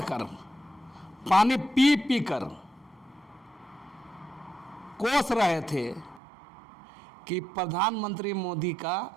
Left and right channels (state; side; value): drops out; left; at 6.2 s